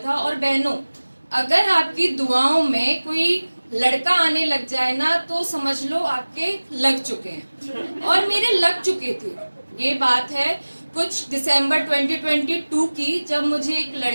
और बहनों, अगर आपकी दुआओं में कोई लड़का आने लग जाए ना तो समझ लो आपके लग चुके हैं, और मेरे लग चुके थे। ये बात है कुछ दिसंबर 2022 की, जब मुझे एक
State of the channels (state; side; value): inverted; both; correlation -1.00